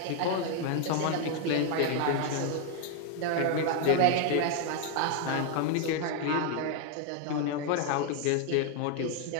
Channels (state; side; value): different; both; correlation 0.00